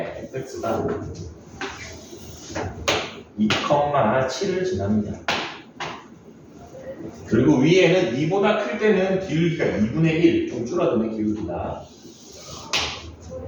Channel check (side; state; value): both; identical; correlation 1.00